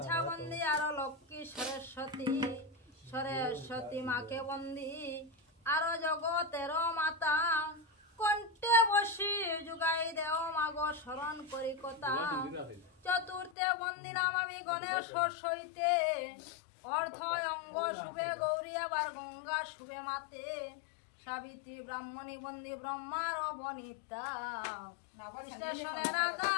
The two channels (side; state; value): right; drops out; at 13.6 s